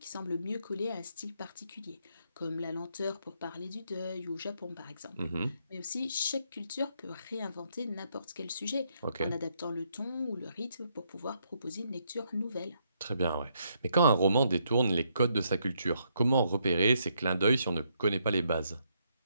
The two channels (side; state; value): both; inverted; correlation -0.75